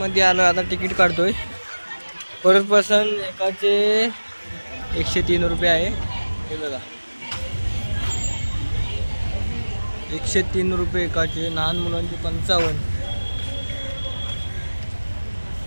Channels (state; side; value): inverted; both; correlation -1.00